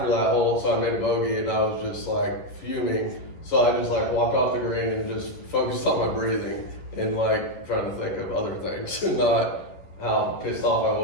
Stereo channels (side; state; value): right; late; 11 ms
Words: that hole, so I made a bogey and I was just like fuming. So I just like walked off the green and just focused on my breathing and like trying to think of other things and not how pissed off I